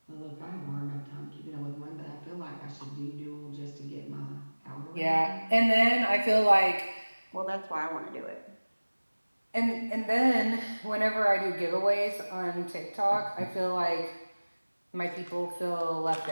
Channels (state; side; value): inverted; both; correlation -1.00